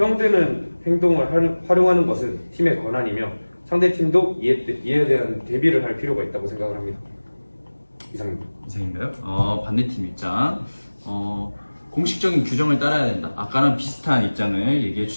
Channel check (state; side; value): inverted; both; correlation -1.00